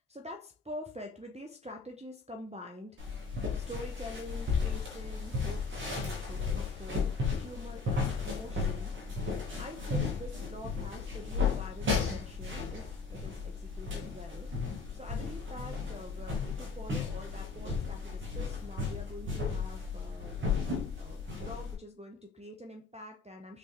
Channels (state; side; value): quieter; right; 4.0 dB